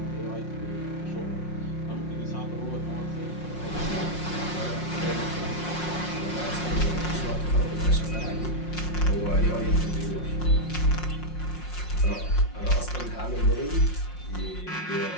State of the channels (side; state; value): right; late; 5.6 ms